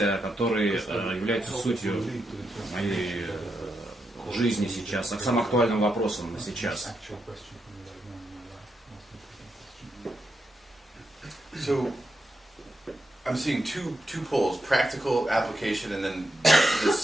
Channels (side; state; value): both; normal; correlation 0.84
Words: которая является сутью моей жизни сейчас, а к самым актуальным вопросам сейчас. So I'm seeing two poles: practical application, and then